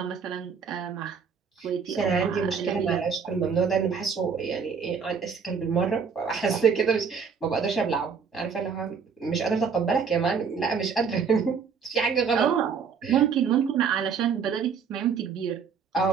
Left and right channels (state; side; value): quieter; left; 6.2 dB